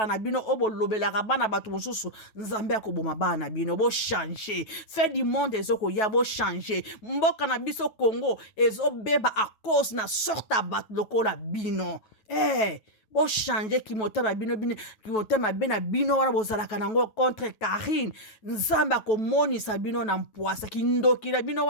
na bino o bolobelaka bana batu mosusu nzambe akoboma bana na bino bo changer fait du monde ezoko ya bo changer mboka na biso Congo ezo beba à cause na sorte tabat lokola bino bo changer kimotema bino kimotema bena bino wana bozalaka nango contre Karine nzamba komonisa bino na mpwasa kindokila bino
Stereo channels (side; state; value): right; late; 9.2 ms